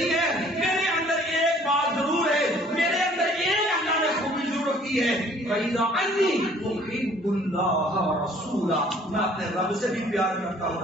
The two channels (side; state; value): both; normal; correlation 0.56